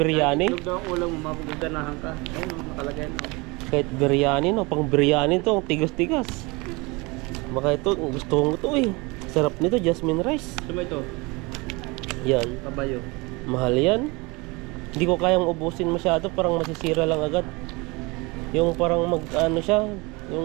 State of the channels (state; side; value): quieter; left; 25.9 dB